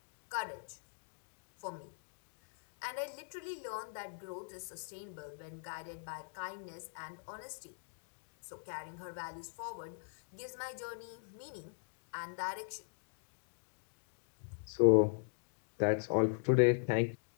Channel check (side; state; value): right; silent; digital silence